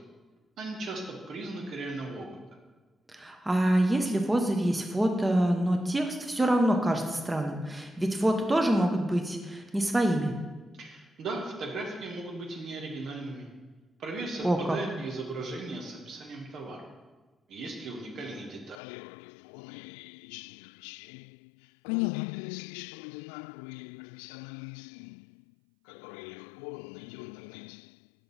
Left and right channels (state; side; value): drops out; right; at 18.8 s